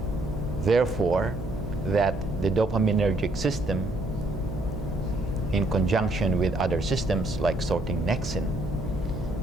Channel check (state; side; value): noise; right; hum, 9 dB below the sound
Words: therefore, that the dopaminergic system, in conjunction with other systems like sorting nexin,